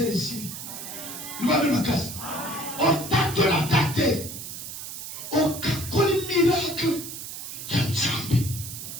ici. Il va de ma casse. On tâte la tâte. On kakoli miracle ya nzambe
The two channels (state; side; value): noise; right; hiss, 9 dB below the sound